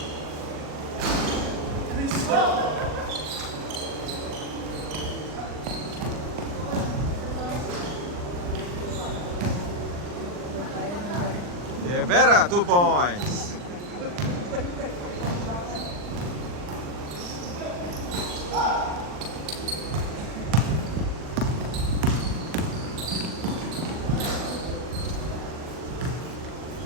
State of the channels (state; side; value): late; left; 40 ms